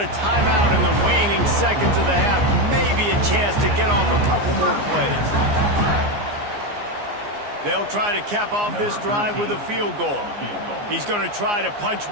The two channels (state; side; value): late; left; 15 ms